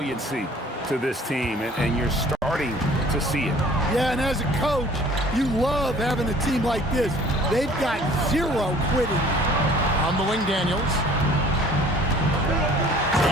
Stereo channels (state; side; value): normal; both; correlation 0.52